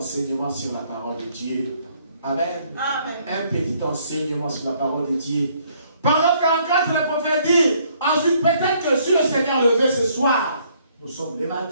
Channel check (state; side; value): inverted; both; correlation -0.65